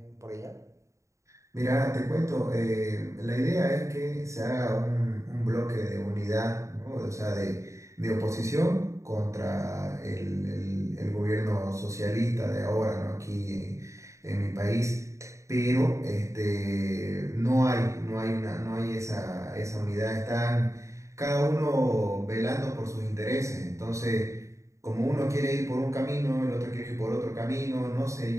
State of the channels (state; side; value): late; left; 0.15 ms